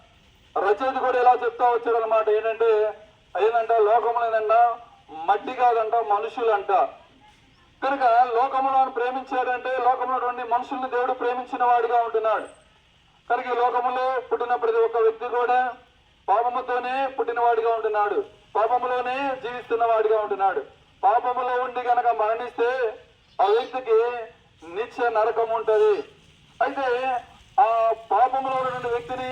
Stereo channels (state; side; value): identical; both; correlation 1.00